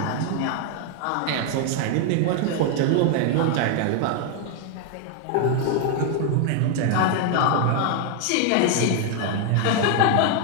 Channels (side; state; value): both; different; correlation 0.00